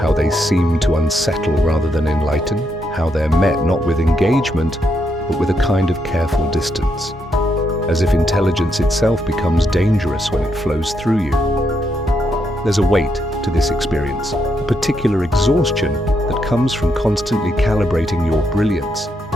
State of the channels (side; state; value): both; normal; correlation 0.79